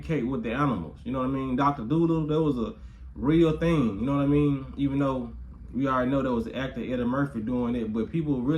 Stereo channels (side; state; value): both; identical; correlation 1.00